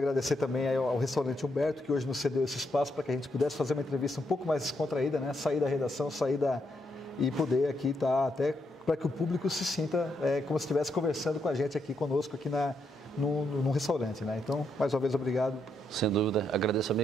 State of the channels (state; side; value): normal; both; correlation 0.78